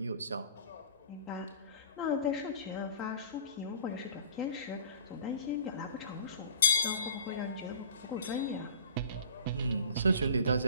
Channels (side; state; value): both; inverted; correlation -0.45